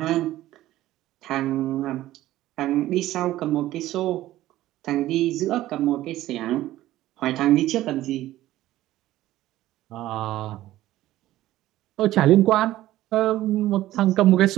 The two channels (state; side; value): quieter; left; 15.0 dB